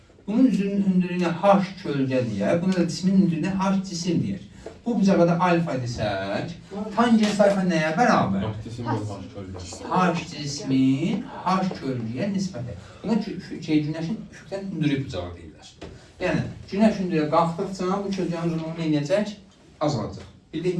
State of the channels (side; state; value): both; identical; correlation 1.00